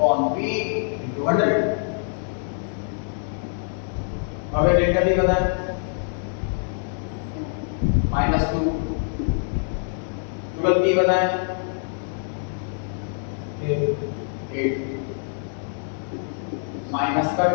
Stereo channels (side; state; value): right; silent; digital silence